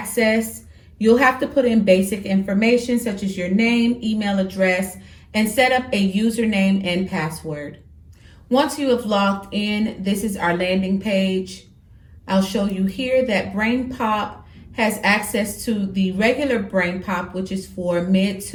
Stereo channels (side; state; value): both; identical; correlation 1.00